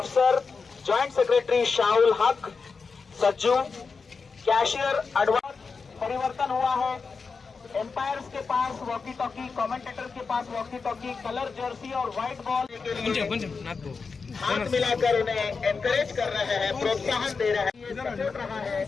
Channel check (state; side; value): quieter; right; 4.9 dB